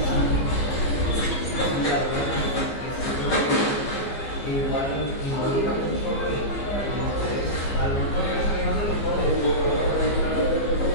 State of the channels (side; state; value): right; late; 15 ms